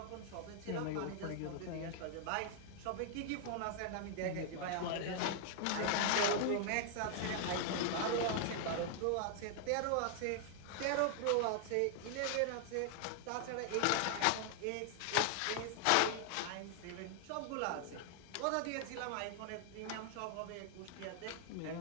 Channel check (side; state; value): both; different; correlation 0.00